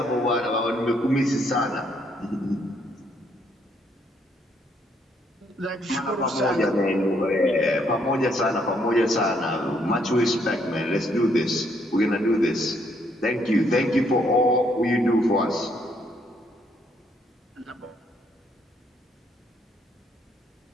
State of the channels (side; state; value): both; normal; correlation 0.70